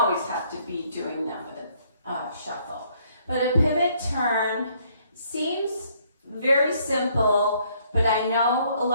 have to be doing them with a shuffle. But a pivot turn seems very simple, but I know a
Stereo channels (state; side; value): inverted; both; correlation -0.66